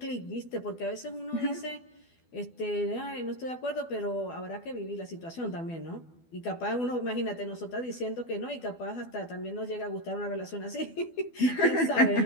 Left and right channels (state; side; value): late; right; 12 ms